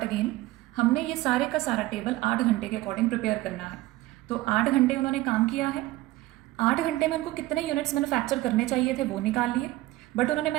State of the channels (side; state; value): left; quieter; 17.9 dB